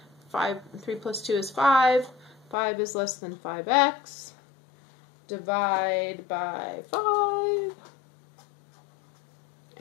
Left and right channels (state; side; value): drops out; right; at 2.6 s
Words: 3 plus 2 is 5. 5 is less than 5x. Divide by 5.